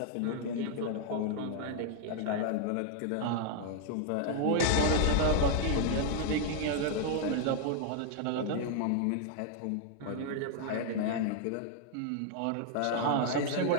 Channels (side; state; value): both; different; correlation 0.00